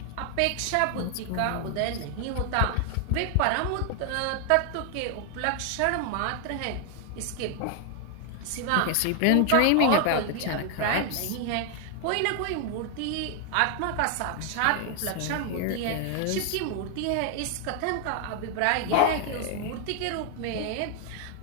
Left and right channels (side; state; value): both; different; correlation 0.00